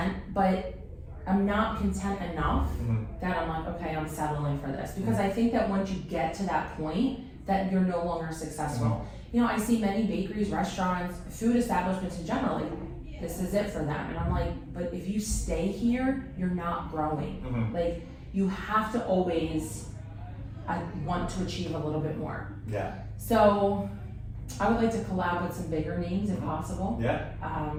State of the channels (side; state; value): both; identical; correlation 1.00